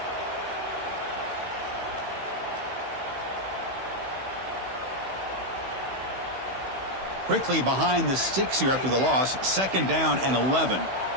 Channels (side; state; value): left; late; 16 ms